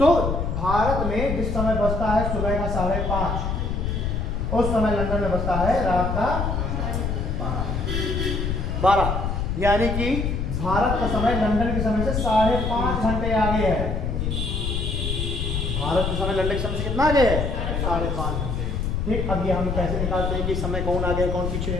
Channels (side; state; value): left; noise; rumble, 1 dB below the sound